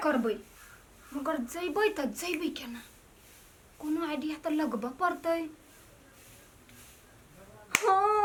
करबै मगर जइबै त जइबै केना कोनो आइडिया त लगबे पड़तै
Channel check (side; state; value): both; identical; correlation 1.00